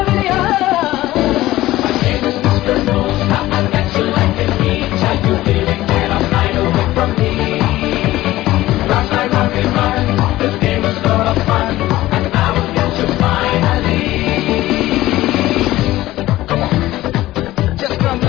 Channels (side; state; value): right; quieter; 16.3 dB